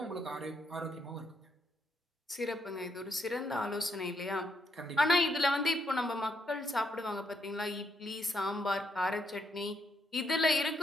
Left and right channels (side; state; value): both; normal; correlation 0.77